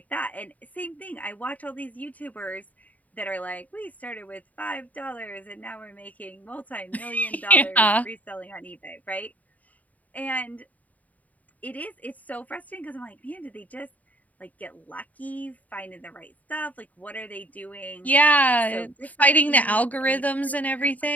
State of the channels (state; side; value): late; right; 0.074 ms